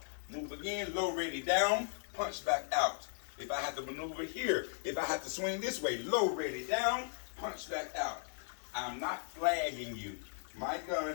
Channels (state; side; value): silent; right; digital silence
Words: Move again, low ready down, punch back out. If I have to maneuver here, if I have to swing this way, low ready down, punch back out. I'm not flagging you. My gun